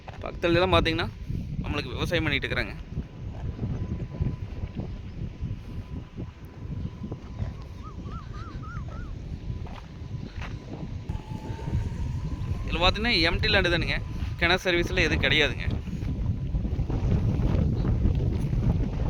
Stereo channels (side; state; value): both; identical; correlation 1.00